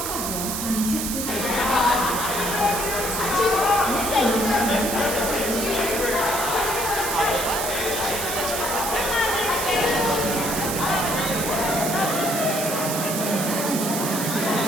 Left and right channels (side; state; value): right; noise; hiss, 3 dB below the sound